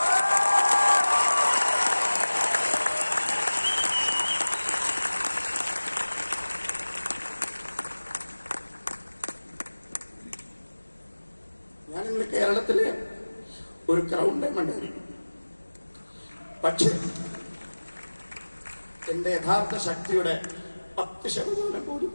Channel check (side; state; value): both; inverted; correlation -1.00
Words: ഞാനിന്ന് കേരളത്തിലെ ഒരു ക്രൗൺ ഡയമണ്ട് ആയിരിക്കും. പക്ഷെ എന്റെ യഥാർത്ഥ ശക്തിയുടെ 10% പോലും